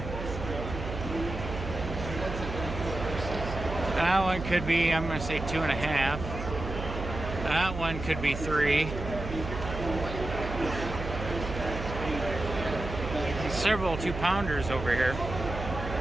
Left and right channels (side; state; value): right; noise; hum, 7 dB below the sound